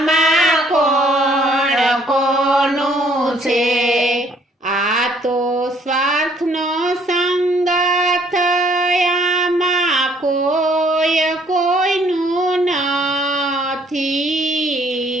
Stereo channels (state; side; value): normal; both; correlation 0.63